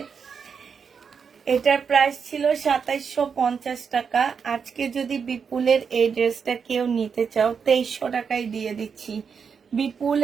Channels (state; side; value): quieter; left; 6.3 dB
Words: এটার প্রাইস ছিল 2750 টাকা। আজকে যদি বিপুলের এই ড্রেসটা কেউ নিতে চাও 2300 টাকায় দিয়ে দিচ্ছি।